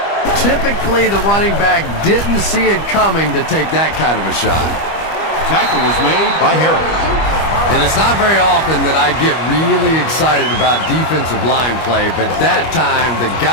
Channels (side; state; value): right; late; 25 ms